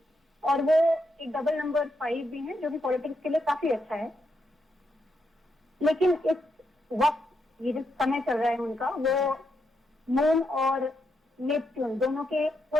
और वो एक डबल नंबर 5 भी है जो कि पॉलिटिक्स के लिए काफी अच्छा है। लेकिन इस वक्त ये जो समय चल रहा है उनका, वो मून और नेपच्यून दोनों के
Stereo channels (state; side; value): normal; both; correlation 0.81